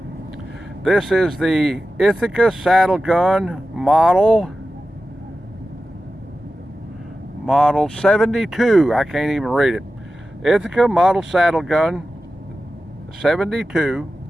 This is the Ithica Saddle Gun model 72. I can't even read it. Ithaca model saddle gun 72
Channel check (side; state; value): both; normal; correlation 0.93